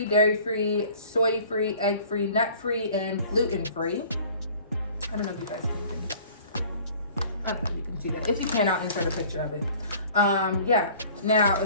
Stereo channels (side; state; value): both; inverted; correlation -0.49